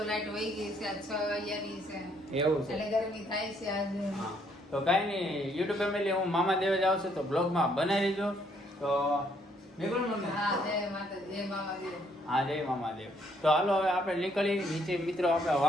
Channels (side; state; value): both; normal; correlation 0.68